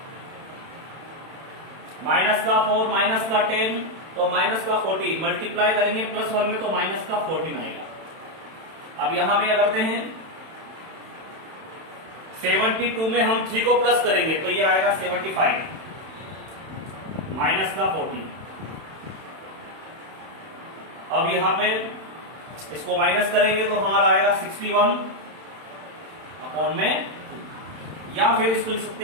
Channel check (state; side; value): late; left; 31 ms